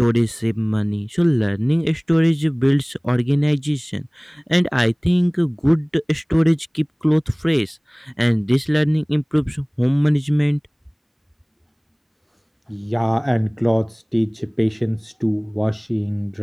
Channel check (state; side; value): identical; both; correlation 1.00